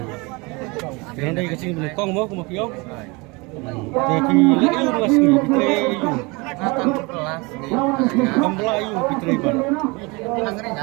Kaya dai kasi kong mo kumakiyo. Jadi layu mas ni pitre yu. Kambla yu pitre ban.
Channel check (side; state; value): left; quieter; 26.8 dB